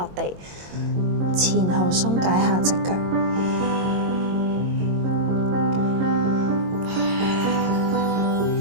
地，前後鬆解下隻腳。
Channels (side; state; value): left; late; 22 ms